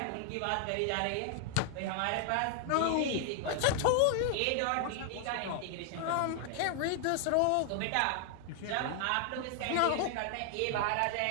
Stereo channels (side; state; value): both; different; correlation 0.00